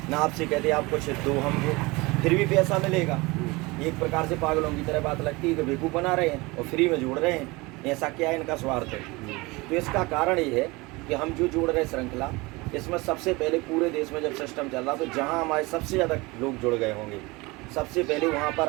ना आपसे कहते आप कुछ दो हमको, फिर भी पैसा मिलेगा। एक प्रकार से पागलों की तरह बात लगती है कि बेवकूफ़ बना रहे हैं और फ्री में जोड़ रहे हैं। ऐसा क्या है, इनका स्वार्थ है। तो इसका कारण ये है कि हम जो जोड़ रहे श्रृंखला, इसमें सबसे पहले पूरे देश में जब सिस्टम चल रहा तो जहाँ हमारे सबसे ज़्यादा लोग जुड़ गए होंगे, सबसे पहले वहाँ पर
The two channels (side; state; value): left; quieter; 23.7 dB